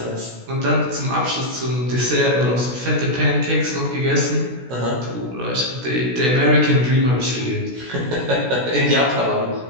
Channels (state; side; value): late; left; 16 ms